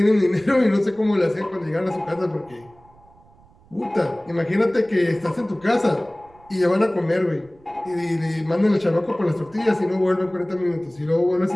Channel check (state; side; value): noise; right; rumble, 28 dB below the sound